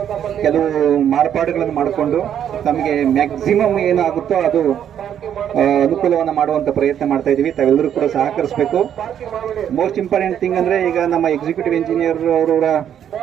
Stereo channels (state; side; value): quieter; left; 9.5 dB